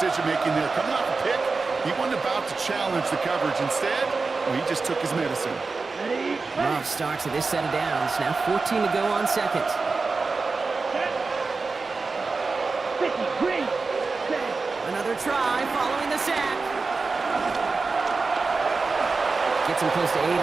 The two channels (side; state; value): left; quieter; 4.1 dB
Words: there. Coming off a pick, he wasn't about to challenge the coverage. Instead, he just took his medicine. Ready. Love starts with this set of downs. Now 14 to go on second. Set. 50 green. Set. Another try following the sack. Gets him close to 8